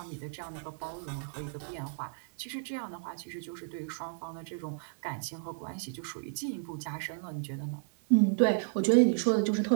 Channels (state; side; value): silent; left; 56 dB below the other